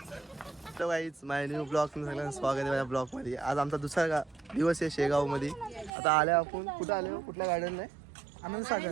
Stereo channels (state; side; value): drops out; left; at 5.9 s